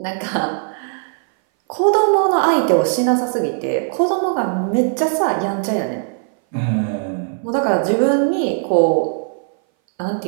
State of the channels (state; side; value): silent; left; 60 dB below the other